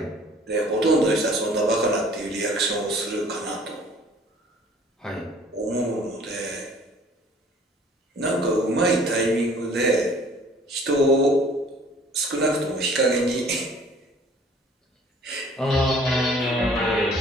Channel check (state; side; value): normal; both; correlation 0.53